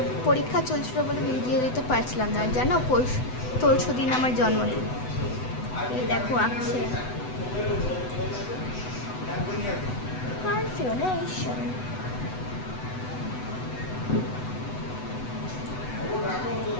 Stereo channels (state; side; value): late; right; 8.0 ms